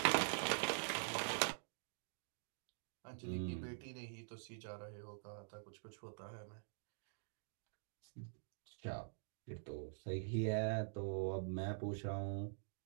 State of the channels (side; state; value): left; silent; digital silence